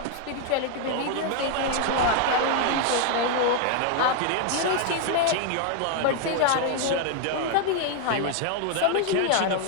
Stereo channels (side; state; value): both; different; correlation 0.00